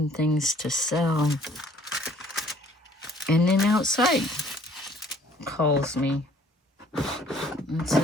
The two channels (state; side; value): normal; both; correlation 0.58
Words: things to sell. And then outside calls me and